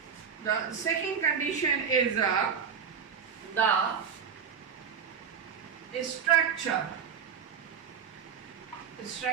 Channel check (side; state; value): left; quieter; 7.2 dB